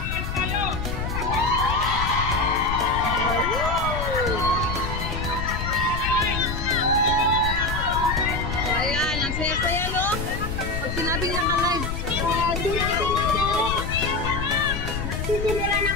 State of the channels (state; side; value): noise; left; rumble, 4 dB below the sound